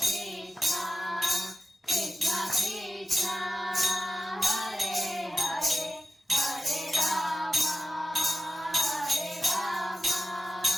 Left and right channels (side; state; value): both; normal; correlation 0.92